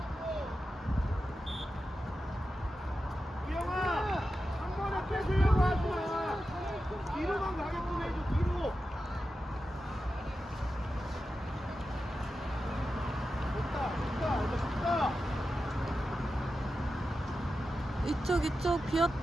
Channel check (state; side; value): normal; both; correlation 0.91